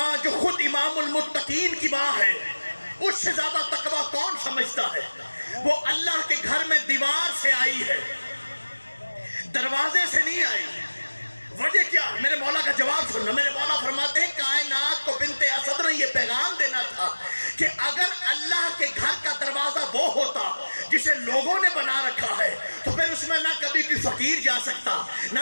جو خود امام المتقین کی ماں ہے، اس سے زیادہ تقوی کون سمجھتا ہے؟ وہ اللہ کے گھر میں دیوار سے آئی ہے، دروازے سے نہیں آئی۔ وجہ کیا؟ میرے مولا کا جواب سننا۔ میرے مولا فرماتے ہیں کائنات کو بنت اسد نے یہ پیغام دینا تھا کہ اگر اللہ کے گھر کا دروازہ وہ ہوتا جسے لوگوں نے بنا رکھا ہے تو پھر اس میں نہ کبھی کوئی فقیر جا سکتا،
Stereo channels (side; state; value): both; inverted; correlation -1.00